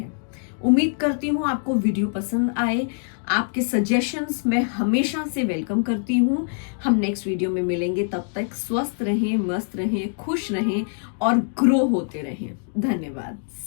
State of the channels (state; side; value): silent; right; digital silence